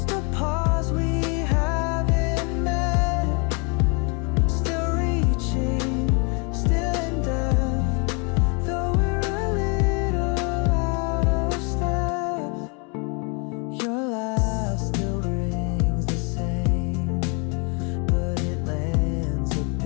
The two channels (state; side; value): quieter; right; 34.0 dB